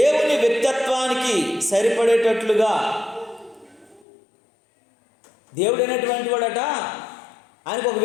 వ్యక్తిత్వానికి సరిపడేటట్లుగా, దేవుడు అనేటువంటి వాడట, ఆయనకు ఒక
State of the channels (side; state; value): right; drops out; at 4.0 s